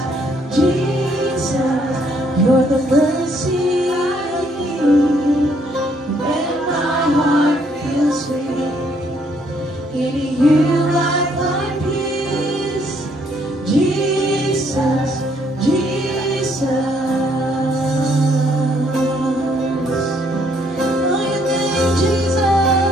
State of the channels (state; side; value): normal; both; correlation 0.68